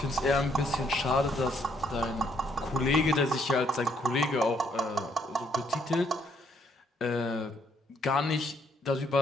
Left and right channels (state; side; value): normal; both; correlation 0.70